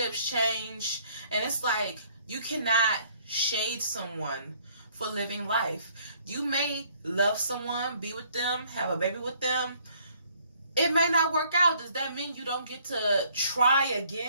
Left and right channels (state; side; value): inverted; both; correlation -0.62